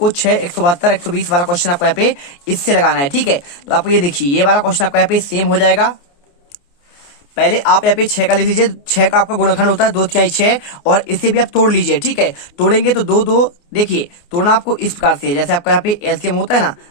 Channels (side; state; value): right; late; 29 ms